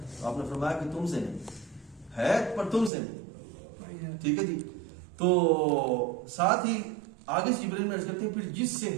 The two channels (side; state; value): left; drops out; at 2.9 s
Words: آپ نے فرمایا کہ تم سے نہیں ہے، پر تم سے نہیں. ٹھیک ہے جی. تو ساتھ ہی آگے سے جبرائیل میں عرض کرتے ہیں پھر جس سے